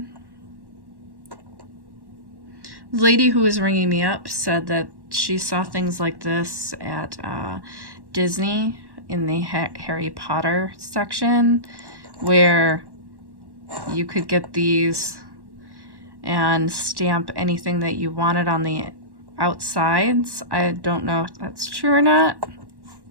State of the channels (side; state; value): left; late; 1.1 ms